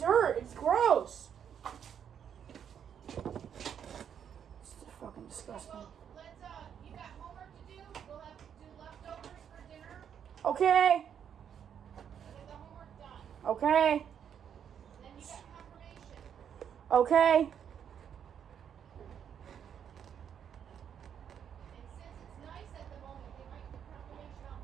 It's gross. It's fucking disgusting. Okay. Okay. Okay.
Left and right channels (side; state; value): left; quieter; 8.4 dB